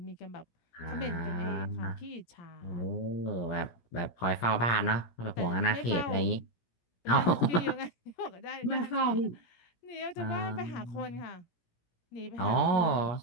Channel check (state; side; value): late; right; 17 ms